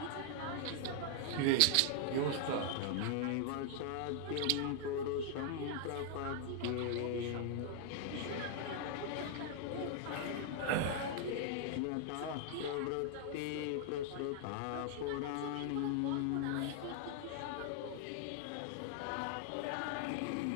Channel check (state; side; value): different; both; correlation 0.00